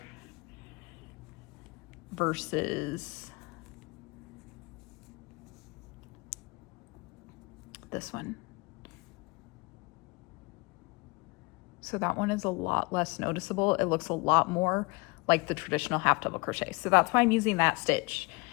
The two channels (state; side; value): quieter; right; 28.1 dB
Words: versus this one. So that one is a lot less noticeable. It looks a lot more like the traditional half double crochet. So that's why I'm using that stitch.